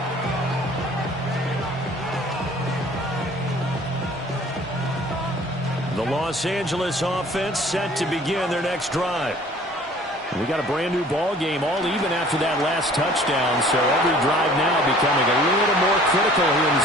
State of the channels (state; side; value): normal; both; correlation 0.51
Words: The Los Angeles offense set to begin their next drive. We got a brand new ball game, all even after that last touchdown, so every drive now becoming a little more critical here in